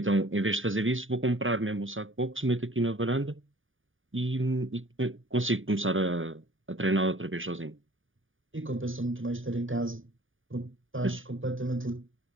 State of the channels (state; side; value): late; left; 0.58 ms